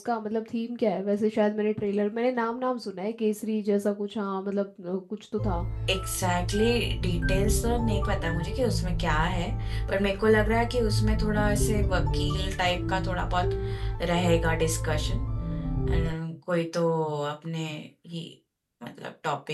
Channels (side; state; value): both; identical; correlation 1.00